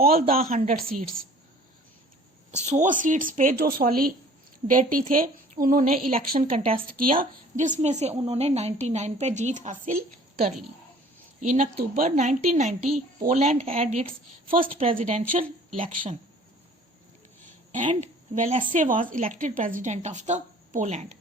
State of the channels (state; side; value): normal; both; correlation 0.50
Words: the 100 seats, 100 seats पे जो सॉलिडेरिटी थे उन्होंने इलेक्शन कंटेस्ट किया, जिसमें से उन्होंने 99 पे जीत हासिल कर ली। In October 1990 Poland had its first presidential election and Walesa was elected president of the Poland.